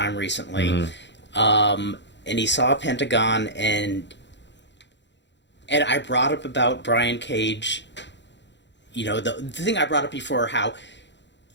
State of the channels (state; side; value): late; right; 0.52 ms